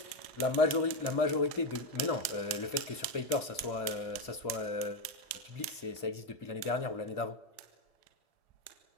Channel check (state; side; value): late; right; 1.7 ms